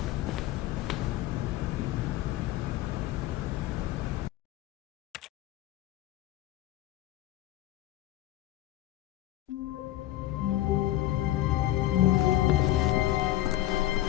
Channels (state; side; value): quieter; right; 14.7 dB